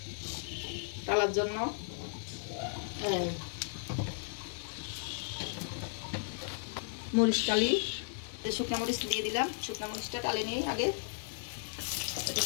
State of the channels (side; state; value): right; silent; 54 dB below the other